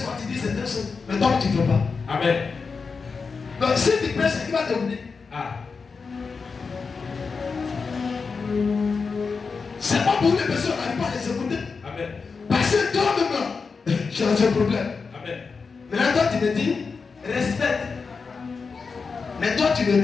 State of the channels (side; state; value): right; quieter; 4.9 dB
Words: quand tu dis certaines choses, mais toi tu ne fais pas. Amen. Donc si tu prêches, il va te venir. Ah. C'est pas pour les personnes qui n'arrivent pas à les écouter. Amen. Parce que toi-même, tu as un problème. Amen. Maintenant, toi, tu me dis, respecte. Mais toi, tu ne